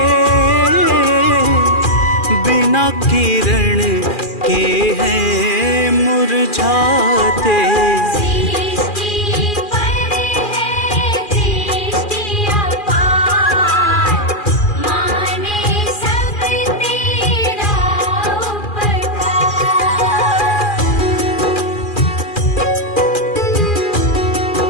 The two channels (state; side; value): late; right; 2.4 ms